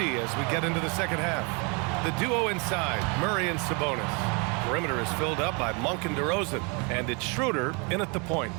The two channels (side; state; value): left; quieter; 32.3 dB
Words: as we get into the second half. The duo inside, Murray and Sabonis. Perimeter is filled up by Monk and DeRozan. And it's Schroeder in at the point.